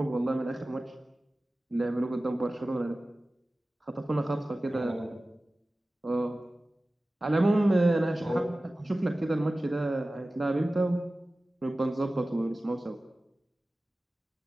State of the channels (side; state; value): both; normal; correlation 0.96